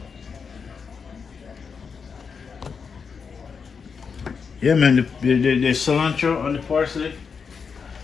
Yeah, man, the cilantro and the parsley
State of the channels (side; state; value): right; quieter; 5.8 dB